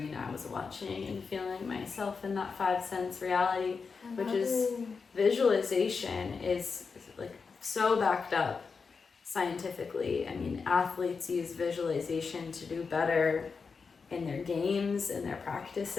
I was watching, and feeling myself in that 5 sense reality, which is visualization is like so backed up scientifically. I mean, athletes use visualization to do better in their games, in their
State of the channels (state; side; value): quieter; right; 5.1 dB